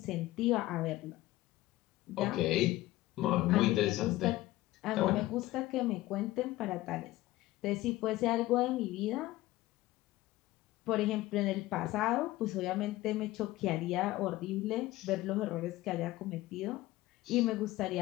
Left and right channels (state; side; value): quieter; right; 17.1 dB